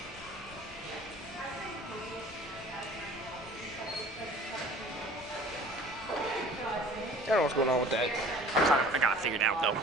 I don't know what's going on with that. I got it figured out, though.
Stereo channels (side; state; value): both; normal; correlation 0.47